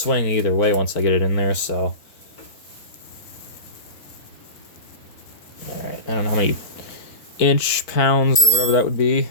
either way once I get it in there, so. Alright, I don't know how many pounds or whatever that would be.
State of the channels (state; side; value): late; right; 4.5 ms